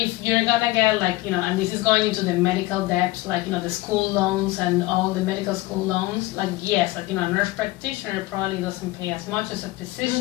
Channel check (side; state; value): right; quieter; 19.1 dB